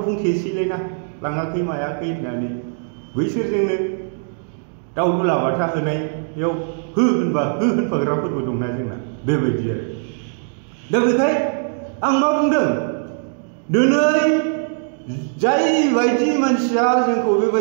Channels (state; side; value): silent; left; digital silence